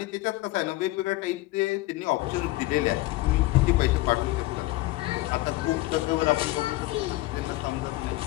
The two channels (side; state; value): right; quieter; 18.8 dB